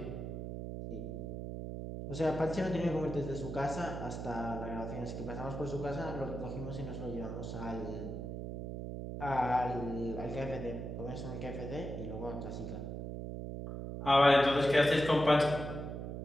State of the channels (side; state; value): right; noise; hum, 6 dB below the sound